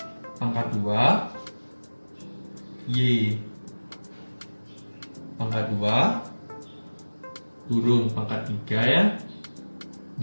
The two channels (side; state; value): both; inverted; correlation -1.00